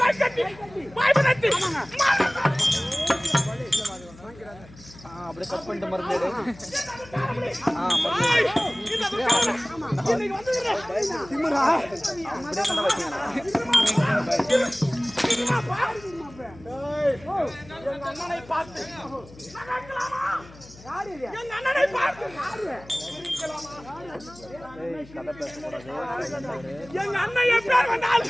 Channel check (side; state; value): left; noise; hum, 21 dB below the sound